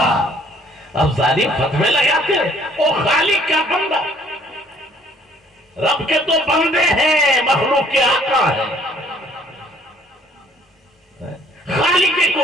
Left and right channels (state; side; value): normal; both; correlation 0.59